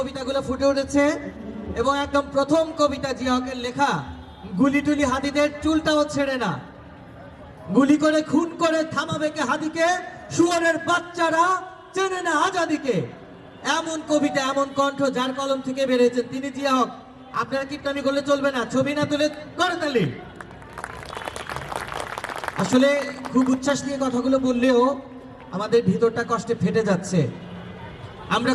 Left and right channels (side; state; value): both; identical; correlation 1.00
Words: ফুটে উঠেছে এবং একদম প্রথম কবিতা জিয়া হকের লেখা, গুলি টুলি হাদিদের চুলটাও ছেড়ে না, গুলি করে খুন করে থামাবে কে হাদিকে, শুয়োরের বাচ্চারা চেনে না আজাদিকে। এমন কবিতা, এমন কণ্ঠ যার কলম থেকে বেরিয়েছেন তিনি জিয়া হক। আপনারা কীর্তনী করলে চলবে না, ছবি না তুলে করে তালি। আসলে খুব উচ্ছ্বাস নিয়ে কথাগুলো বললেও আমাদের ভিতরটা কষ্টে ফেটে যাচ্ছে। আমরা